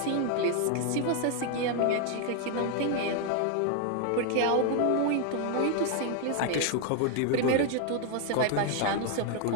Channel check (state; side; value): different; both; correlation 0.00